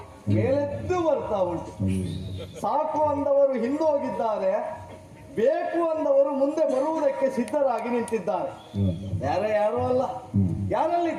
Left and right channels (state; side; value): identical; both; correlation 1.00